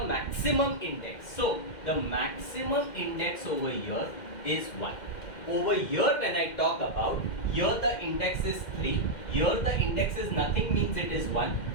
maximum index. So, the maximum index over here is 1. Over here, when I talk about, here the index is 3. Here the index is nothing, means it is 1.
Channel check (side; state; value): right; late; 2.1 ms